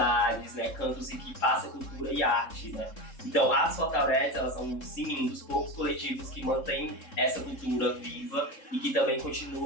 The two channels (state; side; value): late; right; 3.7 ms